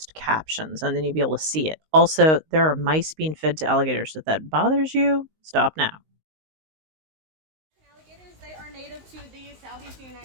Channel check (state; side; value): late; left; 19 ms